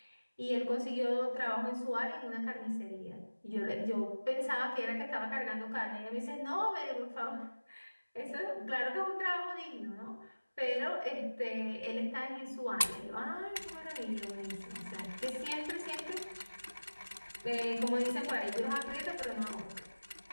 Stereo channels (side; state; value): both; inverted; correlation -1.00